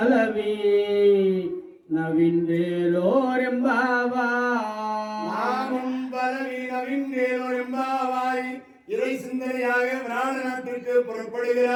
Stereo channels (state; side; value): identical; both; correlation 1.00